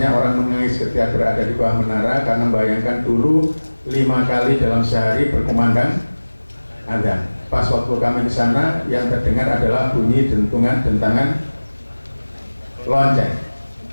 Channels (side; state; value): both; inverted; correlation -1.00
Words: orang menangis ketika berada di bawah menara karena membayangkan dulu 5 kali dalam sehari berkumandang azan. Pas waktu kami di sana yang terdengar adalah bunyi dentangan lonceng.